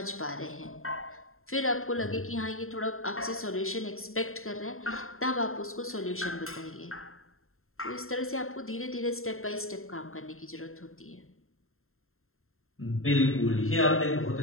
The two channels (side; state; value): right; late; 0.61 ms